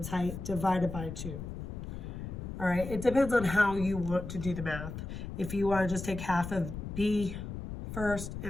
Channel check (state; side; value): noise; left; rumble, 7 dB below the sound